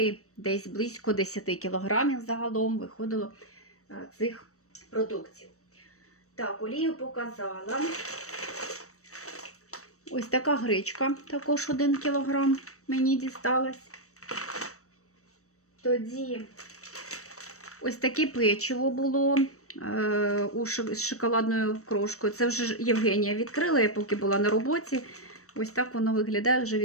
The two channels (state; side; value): late; right; 0.65 ms